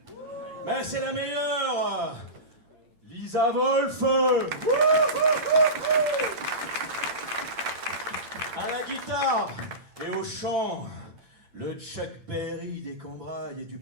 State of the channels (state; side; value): late; left; 8.9 ms